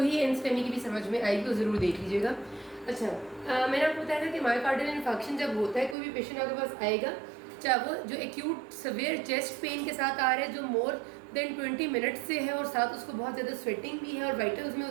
ही एनस्टेमी की भी समझ में आएगी, तो ज़रूर देख लीजिएगा। अच्छा, मैंने आपको बताया था कि मायोकार्डियल इन्फेक्शन जब होता है, कोई भी पेशेंट आपके पास आएगा, चाहे वो जो एक्यूट सवेयर चेस्ट पेन के साथ आ रहा है जो मोर देन 20 मिनट से है और साथ उसको बहुत ज़्यादा स्वेटिंग भी है और वाइटल्स में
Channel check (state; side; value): drops out; left; at 6.0 s